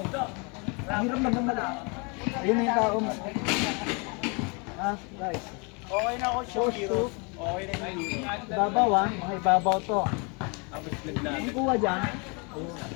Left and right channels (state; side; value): quieter; right; 32.4 dB